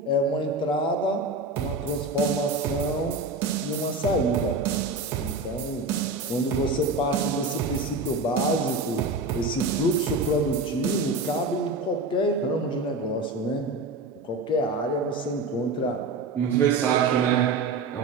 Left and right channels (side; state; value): left; quieter; 3.1 dB